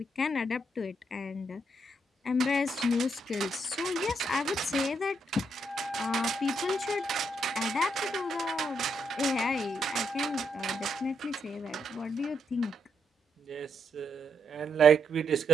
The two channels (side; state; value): both; normal; correlation 0.78